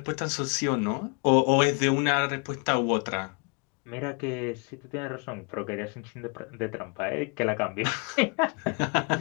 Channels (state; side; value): quieter; right; 33.9 dB